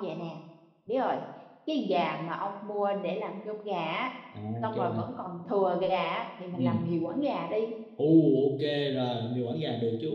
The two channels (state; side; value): identical; both; correlation 1.00